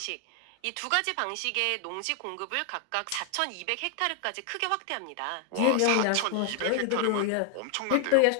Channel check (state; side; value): different; both; correlation 0.00